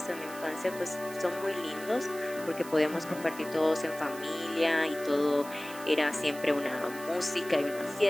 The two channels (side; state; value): right; noise; hiss, 16 dB below the sound